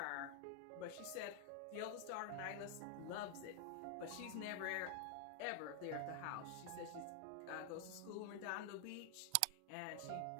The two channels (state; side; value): different; both; correlation 0.00